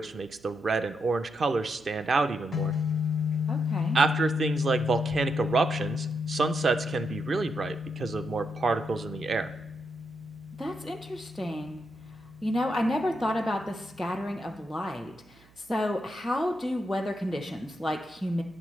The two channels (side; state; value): right; noise; hum, 28 dB below the sound